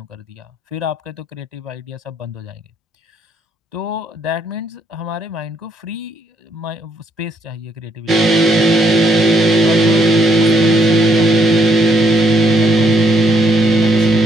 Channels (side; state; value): both; normal; correlation 0.71